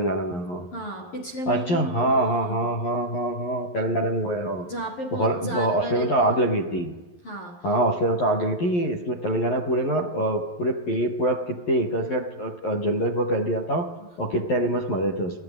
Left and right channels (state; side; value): late; right; 11 ms